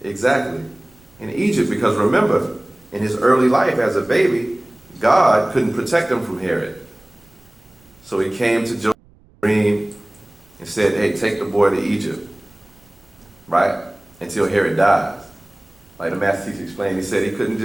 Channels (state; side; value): noise; right; rumble, 29 dB below the sound